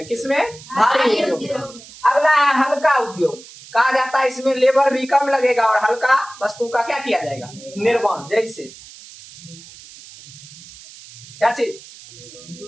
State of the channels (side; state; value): right; noise; hiss, 19 dB below the sound